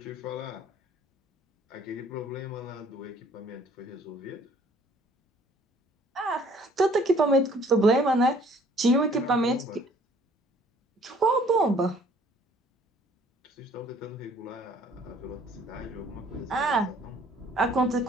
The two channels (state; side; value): normal; both; correlation 0.58